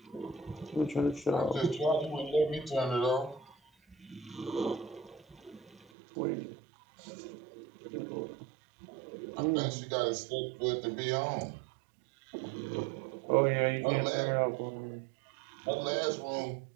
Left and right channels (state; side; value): drops out; left; at 5.9 s